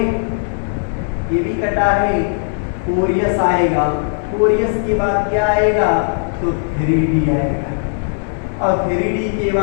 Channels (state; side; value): silent; right; 65 dB below the other